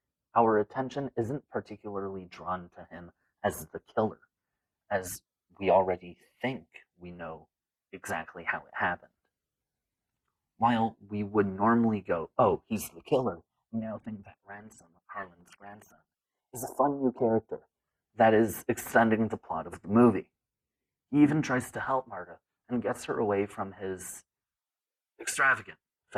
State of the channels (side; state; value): both; identical; correlation 1.00